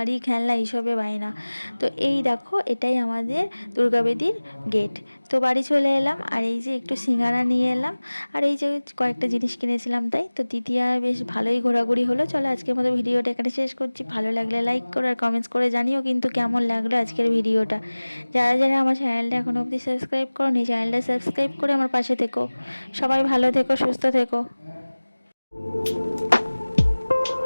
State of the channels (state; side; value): inverted; both; correlation -1.00